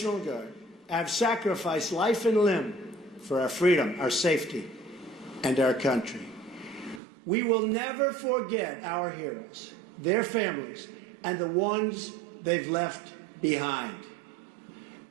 Guard have sacrificed life and limb for our freedom, our safety, and our country. We will never forget our heroes, their families, and the ones they've left behind.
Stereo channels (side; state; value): left; drops out; at 7.0 s